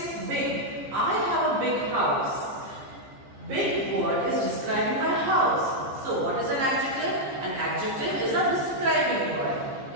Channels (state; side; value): late; left; 15 ms